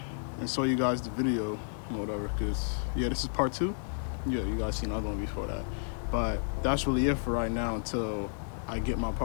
and show you guys the video or whatever, because yeah, this is part 2. Yeah, you guys seen another one before that. But that's really it for right now until I get my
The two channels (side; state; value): right; silent; digital silence